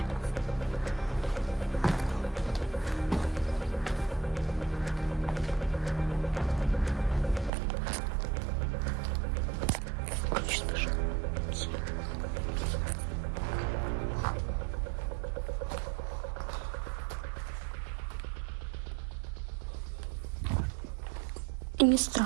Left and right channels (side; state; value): left; drops out; at 7.5 s